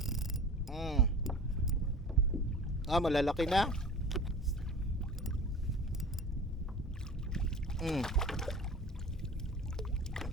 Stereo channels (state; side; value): normal; both; correlation 0.39